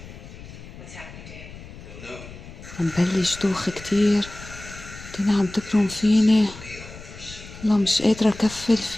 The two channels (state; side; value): noise; left; rumble, 15 dB below the sound